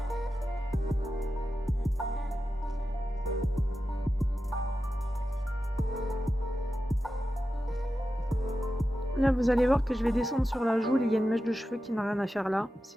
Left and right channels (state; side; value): normal; both; correlation 0.91